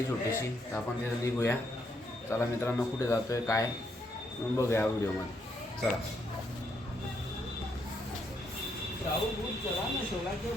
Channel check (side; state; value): both; normal; correlation 0.75